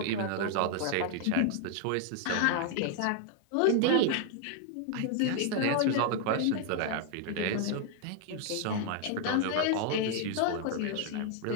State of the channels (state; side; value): different; both; correlation 0.00